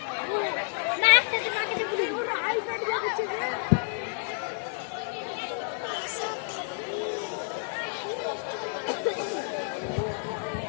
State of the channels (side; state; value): right; silent; 58 dB below the other